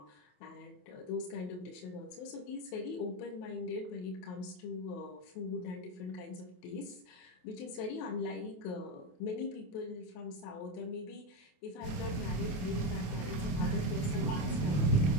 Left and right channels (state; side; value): late; right; 28 ms